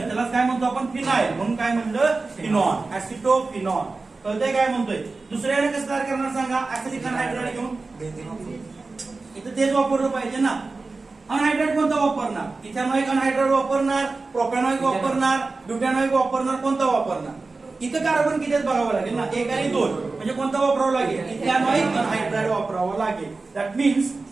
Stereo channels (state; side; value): quieter; left; 3.7 dB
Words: काय म्हणतो आपण? फिनाइल. म्हणून काय म्हणलं? फिनॉन. ऍसिटोफिनॉन. कळतंय काय म्हणतोय? दुसऱ्याने कसं तयार करणार सांगा? ऍसिटिक अनहायड्राइड घेऊन. इथं तेच वापरलं पाहिजे ना. अनहायड्राइड कोणता वापरणार? इथेनॉइक अनहायड्राइड वापरणार, प्रोपॅनॉइक वापरणार, ब्युटॅनॉइक वापरणार, कोणता वापरणार? इथं कार्बन किती बघावं लागेल ना, 1 आणि 2. म्हणजे कोणता वापरावं लागेल? इथेनॉइक अनहायड्राइड वापरावं लागेल. That means